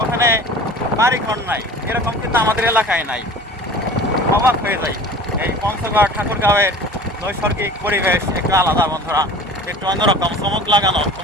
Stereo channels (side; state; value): both; normal; correlation 0.41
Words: ওখানে বাড়িঘর নাই, এরকম কিন্তু আমাদের এলাকায় নাই। অবাক হয়ে যায়। এই পঞ্চগড় ঠাকুরগাঁওয়ের নৈসর্গিক পরিবেশ একটু আলাদা বন্ধুরা, একটু অন্যরকম, চমক লাগানো।